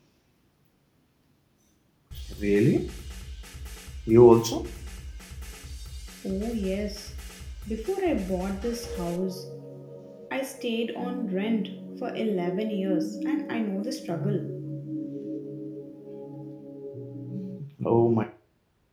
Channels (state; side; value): identical; both; correlation 1.00